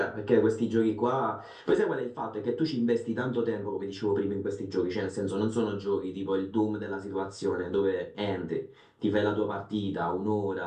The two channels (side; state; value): both; identical; correlation 1.00